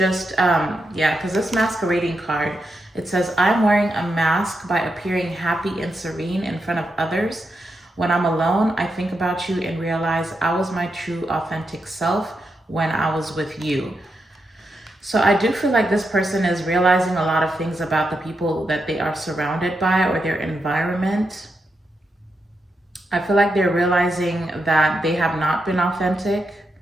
yeah, because this masquerading card, it says, I'm wearing a mask by appearing happy and serene in front of others. When I'm alone, I think about you and realize I was my true authentic self when I was with you. So I do feel like this person is realizing a lot of things about the people that they are surrounded by, or their environment. I feel like they're realizing that they have not been authentic.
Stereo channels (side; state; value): both; normal; correlation 0.85